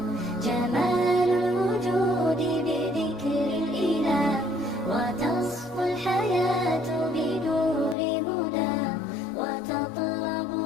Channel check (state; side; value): drops out; right; at 8.0 s